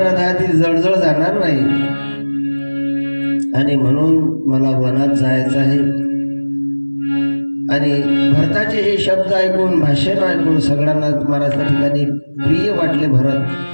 जळजळ जाणार नाही. आणि म्हणून मला वनात जायचं आहे. आणि भरताचे हे शब्द ऐकून, भाषण ऐकून सगळ्यांना महाराज त्या ठिकाणी प्रिय वाटले भरत.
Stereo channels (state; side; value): inverted; both; correlation -1.00